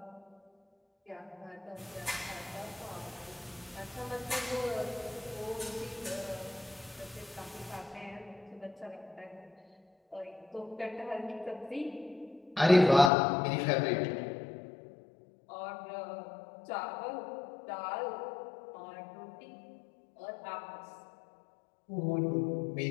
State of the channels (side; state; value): right; drops out; at 13.1 s